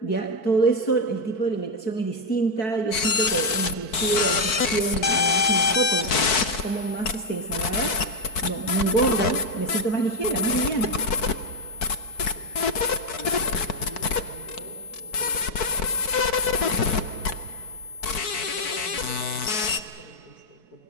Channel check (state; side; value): late; right; 4.6 ms